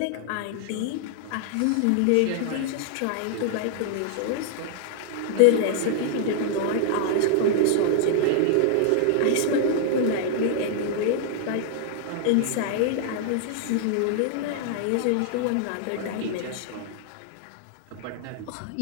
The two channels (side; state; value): both; different; correlation 0.00